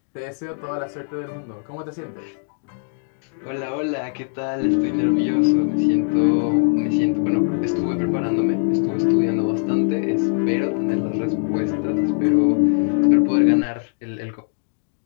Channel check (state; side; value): silent; right; digital silence